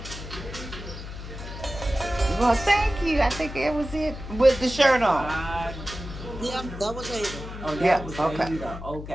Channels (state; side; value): noise; left; hum, 10 dB below the sound